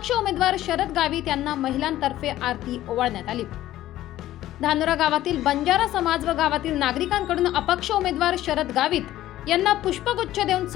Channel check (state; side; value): quieter; right; 14.1 dB